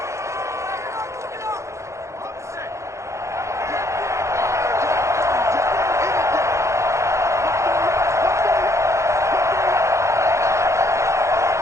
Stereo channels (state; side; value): late; left; 0.14 ms